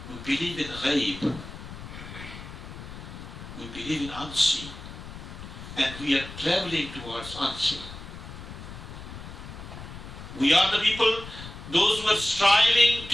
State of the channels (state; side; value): noise; left; rumble, 12 dB below the sound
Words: We believe in ghaib. We believe in unseen. And we are traveling towards unseen. We are the people, those who are striving